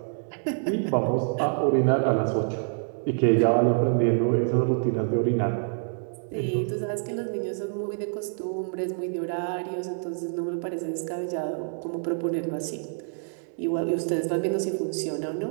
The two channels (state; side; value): silent; left; digital silence